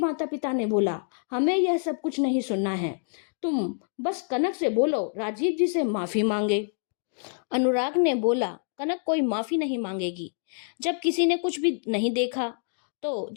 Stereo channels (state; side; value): silent; right; digital silence